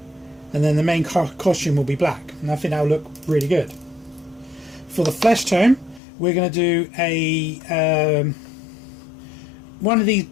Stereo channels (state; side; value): drops out; right; at 6.0 s